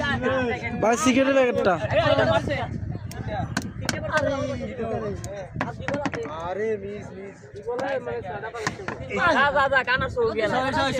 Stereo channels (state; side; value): identical; both; correlation 1.00